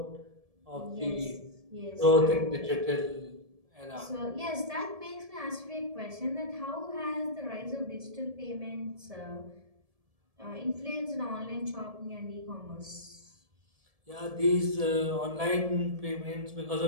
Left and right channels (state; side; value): late; left; 1.7 ms